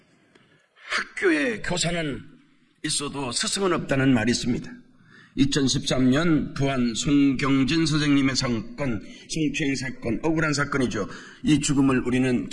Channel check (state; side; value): identical; both; correlation 1.00